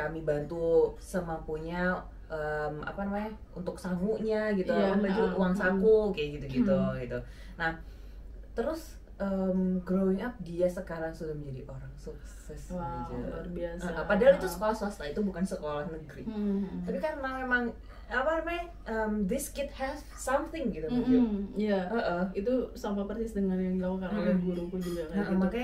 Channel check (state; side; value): identical; both; correlation 1.00